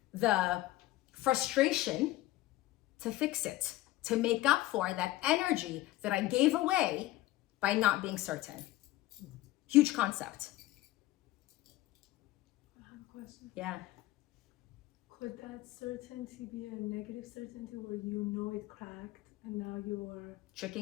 the frustration to fix it, to make up for that energy that I gave away by not being certain. Huge concept. I have a question. Yeah. Could that certainty be a negative certainty where you know it cracked and now you're,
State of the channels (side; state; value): right; quieter; 16.8 dB